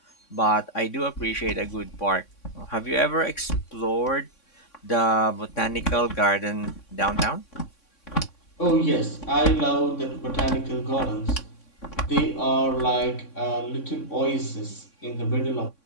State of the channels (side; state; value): right; late; 3.6 ms